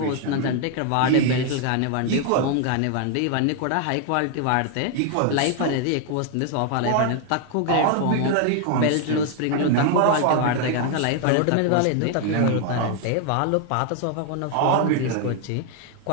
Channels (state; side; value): different; both; correlation 0.00